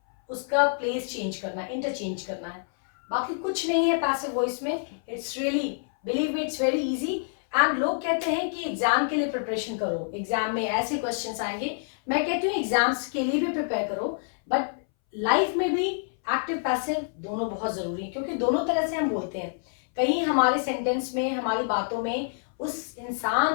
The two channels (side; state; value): right; silent; 60 dB below the other